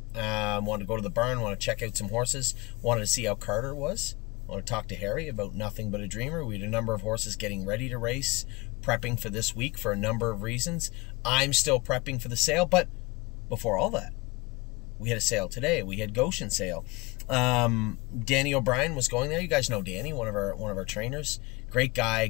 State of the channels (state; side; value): quieter; right; 24.8 dB